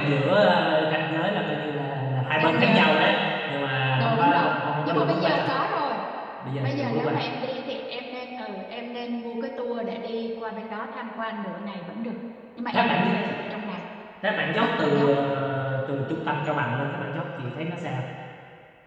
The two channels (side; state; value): both; identical; correlation 1.00